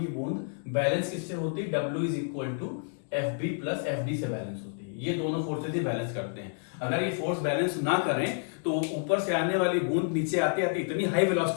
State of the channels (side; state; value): right; silent; digital silence